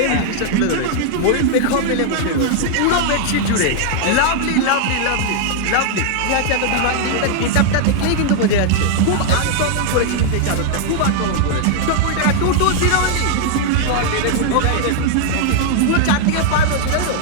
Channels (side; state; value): both; different; correlation 0.00